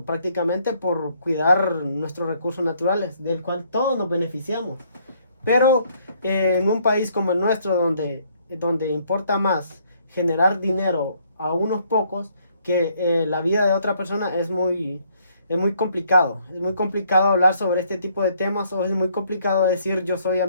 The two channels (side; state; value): both; inverted; correlation -0.66